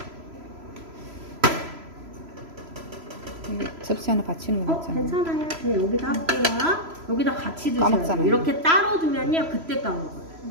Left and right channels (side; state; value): left; late; 3.0 ms